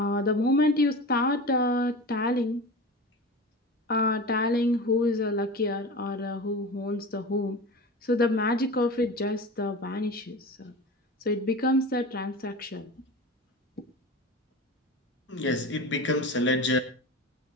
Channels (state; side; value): normal; both; correlation 0.31